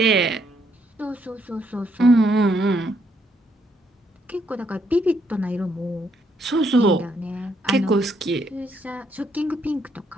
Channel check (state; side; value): normal; both; correlation 0.73